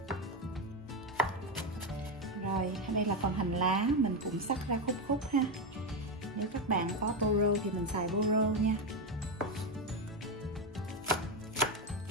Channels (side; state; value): both; normal; correlation 0.10